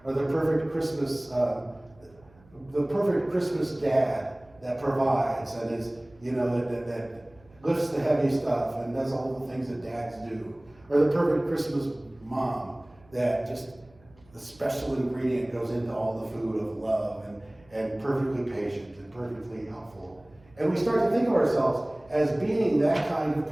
or the perfect Christmas dad that provides and is, you know, that lifts the heavy stuff and does all the things that dads do, or the perfect Christmas mom that just the special ingredient goes into all the food of love and perfectly patient and perfectly helpful. And we start to think of ourselves as being that kind of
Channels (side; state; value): right; noise; hum, 28 dB below the sound